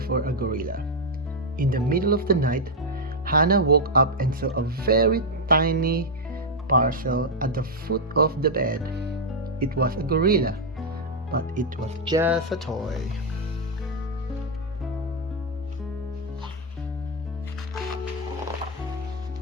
a gorilla. In the middle of the night, Hannah woke up and saw a very tiny parcel at the foot of the bed. It was a gorilla, but it was just a toy.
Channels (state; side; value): normal; both; correlation 0.00